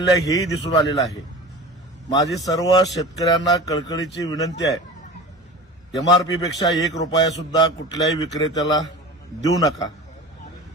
आहे, हेही दिसून आलेलं आहे. माझी सर्व शेतकऱ्यांना कळकळीची विनंती आहे, एमआरपीपेक्षा 1 रुपया सुद्धा कुठल्याही विक्रेत्याला देऊ नका.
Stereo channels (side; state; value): both; normal; correlation 0.35